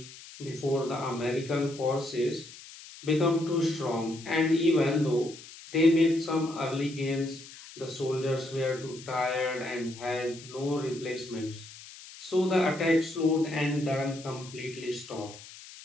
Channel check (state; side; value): noise; left; hiss, 17 dB below the sound